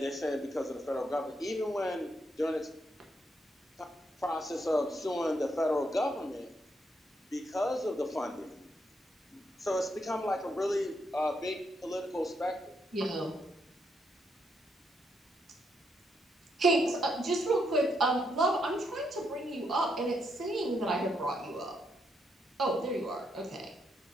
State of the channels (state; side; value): normal; both; correlation 0.78